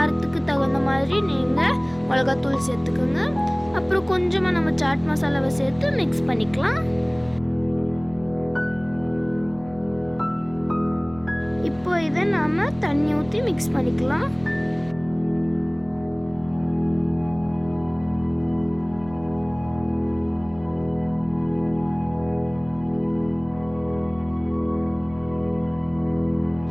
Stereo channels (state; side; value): noise; right; rumble, 21 dB below the sound